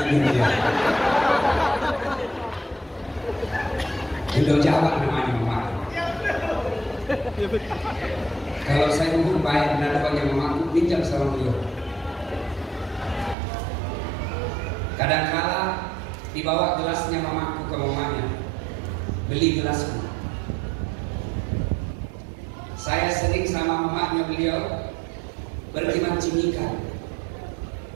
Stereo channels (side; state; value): left; drops out; at 13.4 s